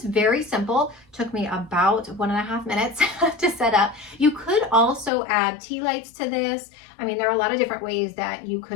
very simple. Took me about 1.5 minutes to set up. You could also add tea lights to this. I mean, there are a lot of different ways that you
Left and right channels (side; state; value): right; drops out; at 5.1 s